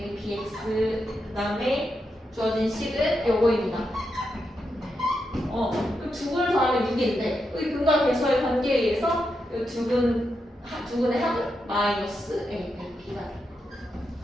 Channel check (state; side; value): normal; both; correlation 0.85